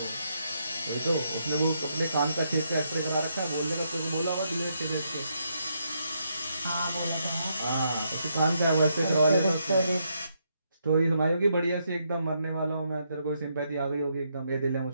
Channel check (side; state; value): both; inverted; correlation -0.78